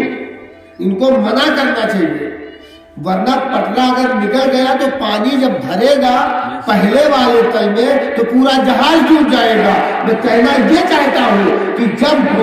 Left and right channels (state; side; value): identical; both; correlation 1.00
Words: ان کو منع کرنا چاہیے، ورنہ پٹرا اگر نکل گیا تو پانی جب بھرے گا پہلے والے تل میں تو پورا جہاز ڈوب جائے گا۔ میں کہنا یہ چاہتا ہوں کہ جب